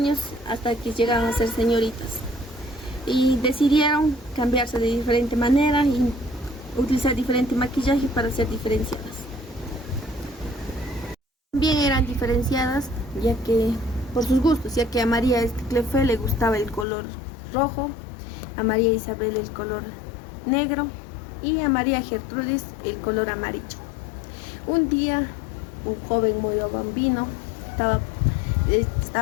hasta que llegaron a ser señoritas. Y decidieron cambiarse de diferente manera y utilizar diferente maquillaje para ser diferenciadas. También eran diferenciadas ya que por sus gustos, ya que a María Clefe le gustaba el color rojo, a María Isabel el color negro y a María Gertrudis el color amarillo. Un día un joven Moyo Bambino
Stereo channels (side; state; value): right; drops out; at 16.9 s